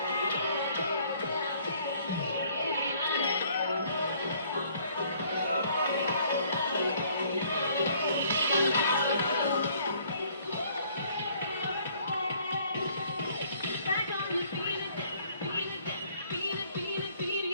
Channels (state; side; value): inverted; both; correlation -0.61